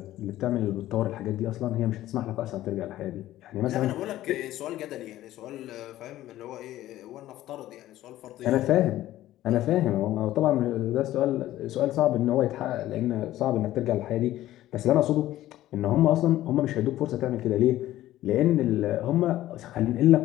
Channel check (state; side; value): quieter; right; 14.5 dB